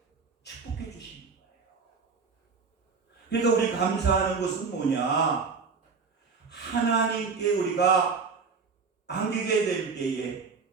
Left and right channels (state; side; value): quieter; left; 5.0 dB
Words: 축복해 주시는 거예요. 그러니까 우리 감사하는 것은 뭐냐? 하나님께 우리가 안기게 될 때에